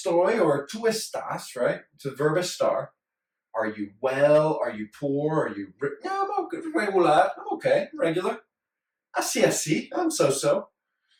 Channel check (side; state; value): both; identical; correlation 1.00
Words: or tú estás, right? It's a verb estar. Are you well? Are you poor? Are you... No, I'm okay, regular. I'm okay, regular. Así, I'm so-so.